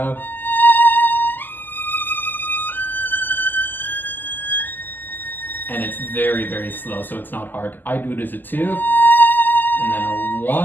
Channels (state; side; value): late; right; 0.088 ms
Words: And it's very, very slow, so it's not hard. I do it as a 2, and then a